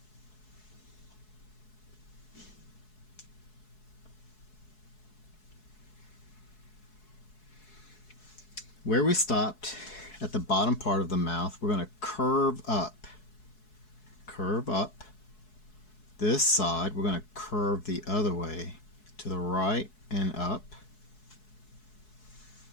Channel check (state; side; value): late; right; 4.7 ms